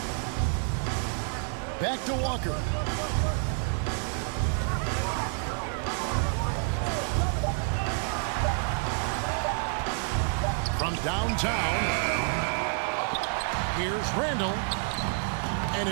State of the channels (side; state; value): left; silent; 56 dB below the other